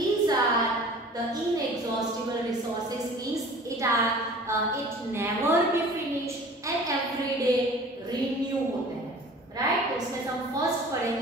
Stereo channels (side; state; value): both; normal; correlation 0.45